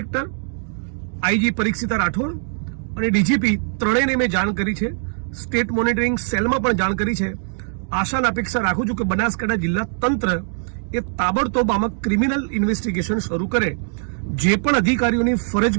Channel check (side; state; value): left; silent; 60 dB below the other